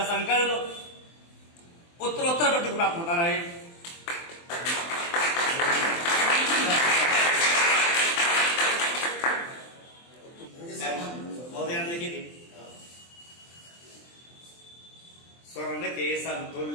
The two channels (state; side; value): late; right; 23 ms